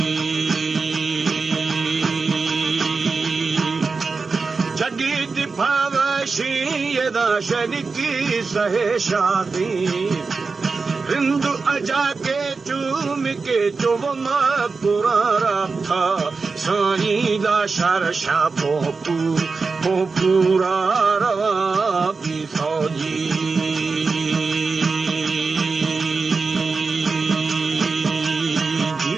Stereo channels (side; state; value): left; quieter; 4.4 dB